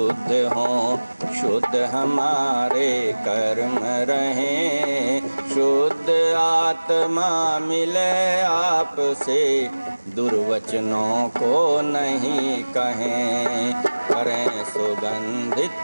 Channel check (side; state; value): both; inverted; correlation -1.00